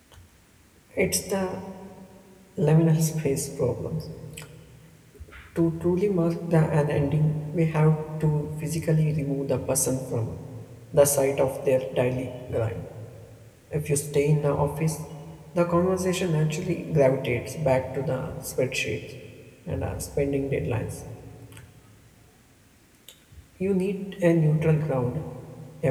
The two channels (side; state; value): both; identical; correlation 1.00